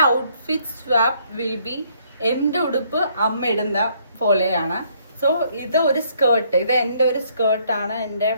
outfit swap will be എൻ്റെ ഉടുപ്പ് അമ്മ ഇടുന്ന പോലെയാണ്. സോ ഇത് ഒരു സ്കേർട്ട്, ഇത് എൻ്റെ ഒരു സ്കേർട്ടാണ്. എൻ്റെ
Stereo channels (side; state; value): both; inverted; correlation -0.67